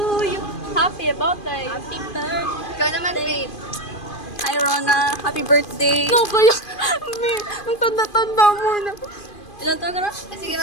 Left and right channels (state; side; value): late; right; 2.4 ms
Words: you. Happy birthday. Happy birthday. Ikaw naman, Faith. Hi, Rona. Happy birthday. No, kaya, ang tanda-tanda mo na. Ilan taon ka na? Sige,